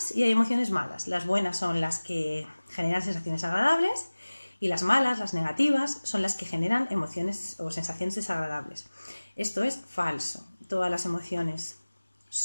y hay emociones malas. Las buenas son las que generan sensaciones agradables y las malas, las negativas, son las que generan emociones o sensaciones desagradables. Esto es falso. Todas las emociones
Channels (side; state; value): both; inverted; correlation -1.00